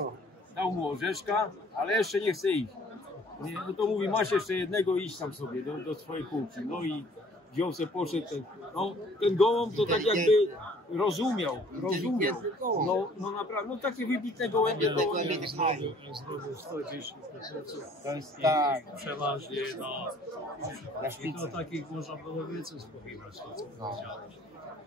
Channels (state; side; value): normal; both; correlation 0.56